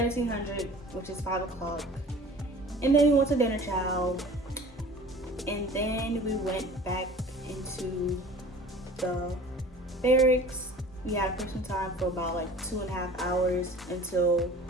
which is 5 o'clock. And then we went to dinner chow. And then we went back into the barracks. We had person time for about like 2.5 hours until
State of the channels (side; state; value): both; normal; correlation 0.44